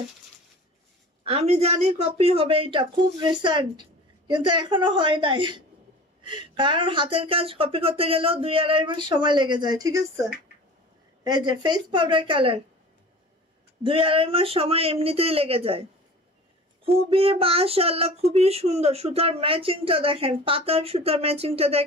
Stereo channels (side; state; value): both; normal; correlation 0.40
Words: আমি জানি কপি হবে, এটা খুব রিসেন্ট, কিন্তু এখনো হয় নাই, কারণ হাতের কাজ কপি করতে গেলেও 2-2.5 মাস সময় লেগে যায়, ঠিক আছে? এই যে ফেস পাউডার কালার, 2-2.5 মাস সময় এমনিতেই লেগে যায়। খুবই মাশাআল্লাহ, খুবই সুন্দর। সুতার ম্যাচিংটা দেখেন, পাতার সুতার ম্যাচিংটা